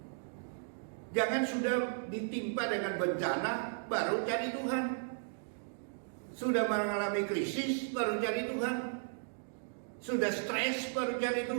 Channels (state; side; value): silent; left; digital silence